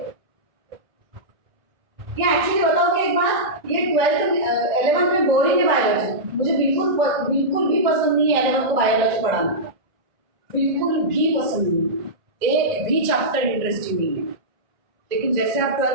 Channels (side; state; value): left; late; 1.9 ms